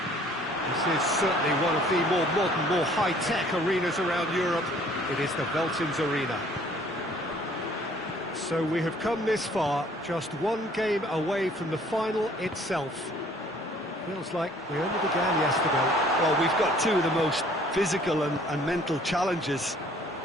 This is certainly one of the more modern, more high-tech arenas around Europe. It is the Veltins Arena. So we have come this far, just 1 game away from the final itself. Feels like we only began yesterday. Well, we've got 2 of the most physical and mental challenges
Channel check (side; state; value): both; normal; correlation 0.57